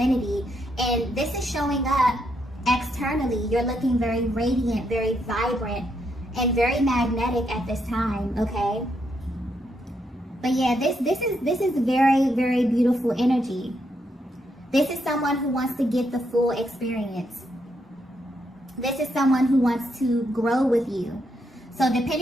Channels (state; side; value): normal; both; correlation 0.78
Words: And this is showing up externally. You're looking very radiant, very vibrant, and very magnetic at this time, okay? But yeah, this is very, very beautiful energy. This is someone who wants to get the full experience. This is someone who wants to grow with you. So